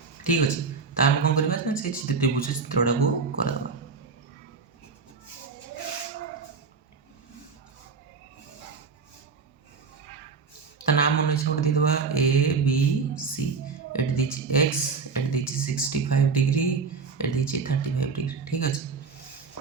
ଠିକ୍ ଅଛି। ତ ଆମେ କ'ଣ କରିବା ନା ସେ ତ୍ରିଭୁଜ ଚିତ୍ରଟାକୁ କରିଦେବା। ତା ନାଁ ମନେ ଇଚ୍ଛା ଗୋଟେ ଦେଇଦେବା ଏ ବି ସି। ଏଠି ଦେଇଛି ଏକ୍ସ, ଏଠି ଦେଇଛି 65 ଡିଗ୍ରୀ, ଏଠି ଦେଇଛି 35 ଡିଗ୍ରୀ। ଠିକ୍ ଅଛି।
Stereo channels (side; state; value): left; quieter; 4.9 dB